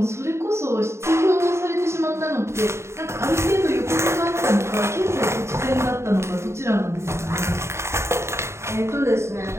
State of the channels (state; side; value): late; left; 0.13 ms